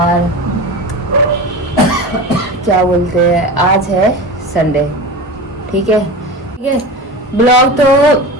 क्या बोलते हैं, आज है संडे। ठीक है। ब्लॉग तो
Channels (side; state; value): both; normal; correlation 0.29